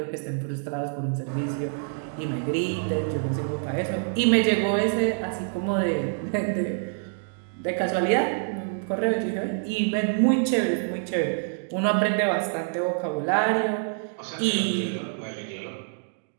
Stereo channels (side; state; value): left; silent; digital silence